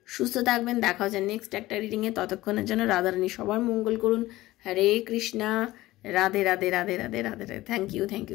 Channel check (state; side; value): quieter; right; 17.4 dB